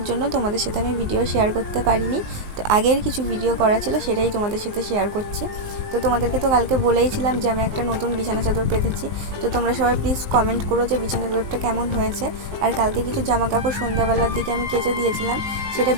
জন্য তোমাদের সাথে আমি ভিডিও শেয়ার করতে পারিনি। তো আগের কিছু ভিডিও করা ছিল সেটাই তোমাদের সাথে শেয়ার করছি। তো তোমাদেরকে তো কালকে বলেইছিলাম যে আমি একটা নতুন বিছানা চাদর পেতেছি। তো তোমরা সবাই প্লিজ কমেন্ট করো যে বিছানা চাদরটা কেমন হয়েছে। আর কালকে কিছু জামা কাপড় সন্ধ্যাবেলার দিকে আমি কেচে দিয়েছিলাম, সেটা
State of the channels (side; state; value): left; late; 19 ms